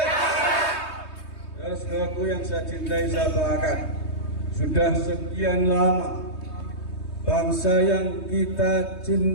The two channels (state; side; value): late; right; 3.2 ms